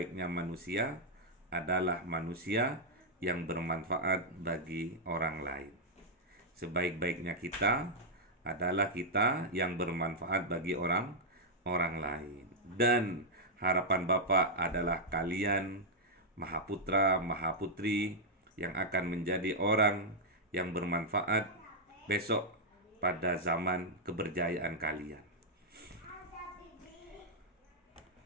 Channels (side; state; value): both; normal; correlation -0.05